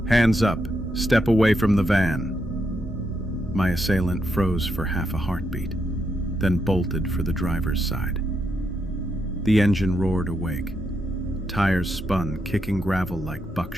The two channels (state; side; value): normal; both; correlation 0.81